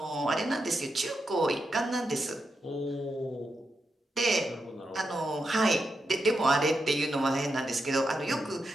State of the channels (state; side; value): normal; both; correlation 0.86